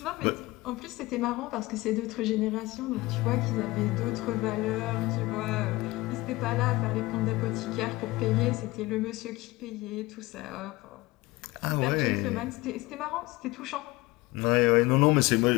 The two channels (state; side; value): quieter; right; 20.6 dB